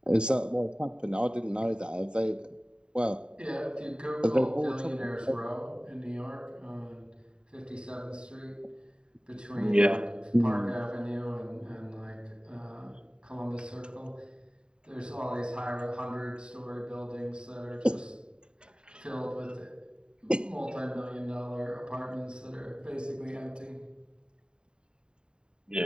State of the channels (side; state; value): left; late; 0.049 ms